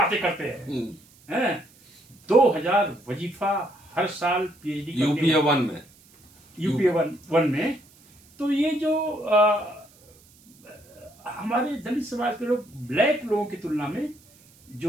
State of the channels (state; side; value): noise; right; hiss, 28 dB below the sound